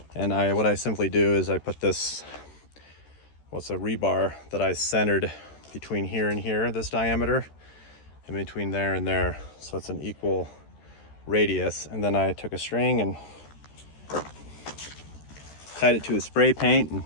And what I simply do is I put this, what's a rebar that I centered between here and here, this diameter, and between there and there, so it's an equal radius. And then I took a string and tied it to a spray paint and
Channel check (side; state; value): right; late; 13 ms